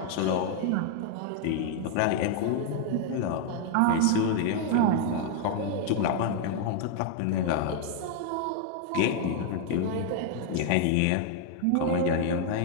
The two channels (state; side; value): different; both; correlation 0.00